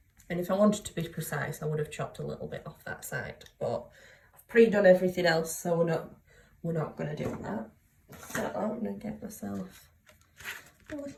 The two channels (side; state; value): both; identical; correlation 1.00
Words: And if I wanted to be precise, I would have chopped a little bit off that side, but I've pre-done everything else, so we're not going to do that. So I'm going to get myself a